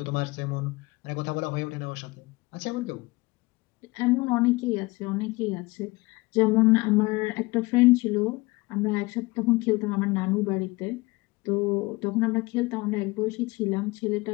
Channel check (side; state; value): right; quieter; 23.0 dB